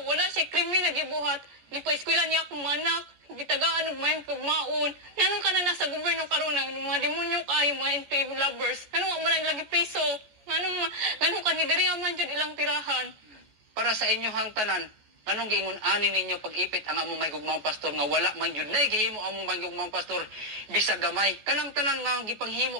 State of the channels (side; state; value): left; late; 14 ms